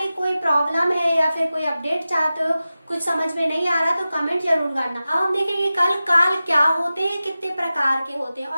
कोई प्रॉब्लम है या फिर कोई अपडेट चाहते हो, कुछ समझ में नहीं आ रहा तो कमेंट जरूर करना। अब हम देखेंगे कल काल क्या होते हैं, कितने प्रकार के होते हैं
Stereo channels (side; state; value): both; inverted; correlation -0.95